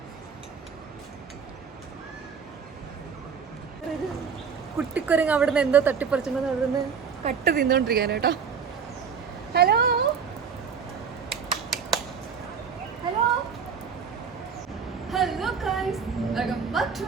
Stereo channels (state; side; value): quieter; left; 6.3 dB